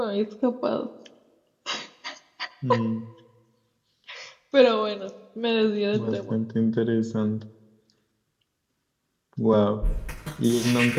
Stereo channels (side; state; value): both; identical; correlation 1.00